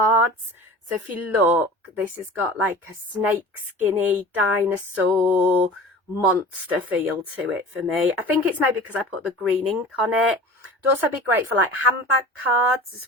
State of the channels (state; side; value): normal; both; correlation 0.38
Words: So if you look, this has got like a snake skinny dinosaur monster feel to it for me. I think it's maybe because I put the green ink on it. It'd also be great for like handbag cards as